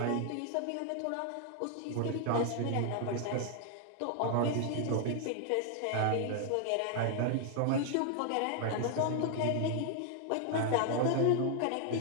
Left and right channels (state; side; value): different; both; correlation 0.00